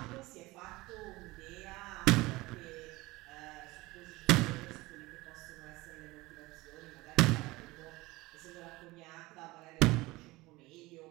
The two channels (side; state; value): left; quieter; 20.8 dB